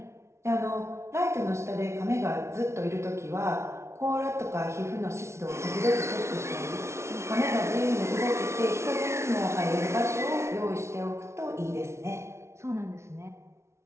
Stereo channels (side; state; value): left; late; 0.13 ms